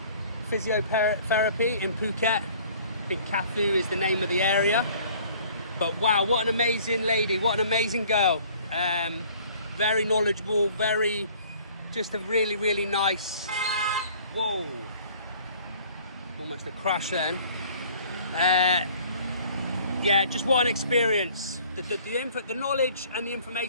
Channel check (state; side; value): inverted; both; correlation -0.53